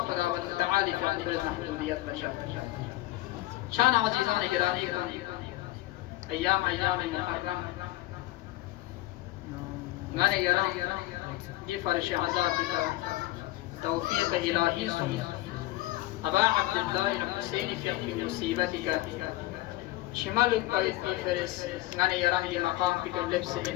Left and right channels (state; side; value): quieter; right; 17.4 dB